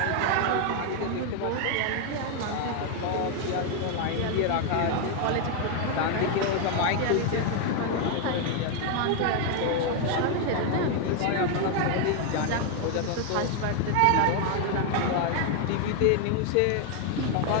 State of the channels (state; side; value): different; both; correlation 0.00